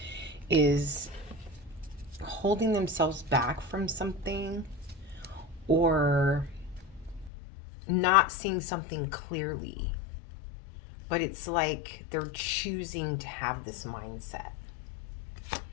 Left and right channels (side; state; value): right; drops out; at 7.3 s